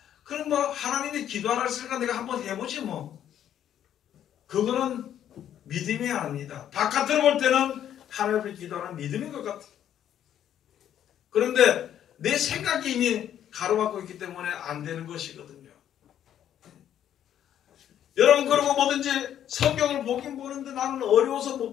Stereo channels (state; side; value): quieter; right; 10.4 dB